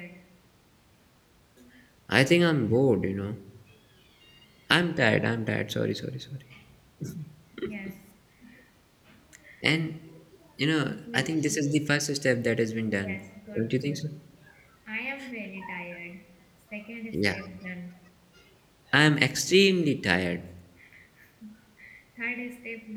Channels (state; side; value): identical; both; correlation 1.00